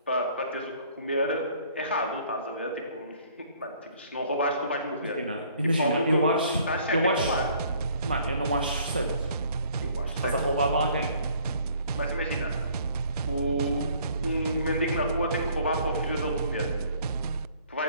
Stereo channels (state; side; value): inverted; both; correlation -0.58